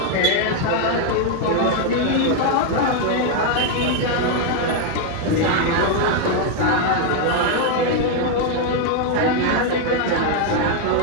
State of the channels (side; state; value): both; different; correlation 0.01